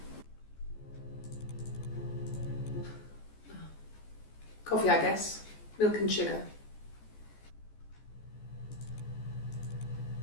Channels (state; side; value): late; right; 14 ms